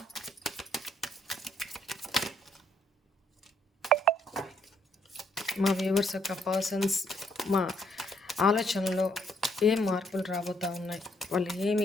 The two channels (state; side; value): normal; both; correlation 0.70